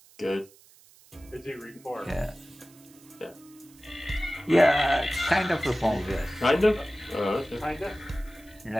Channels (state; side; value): noise; right; hiss, 26 dB below the sound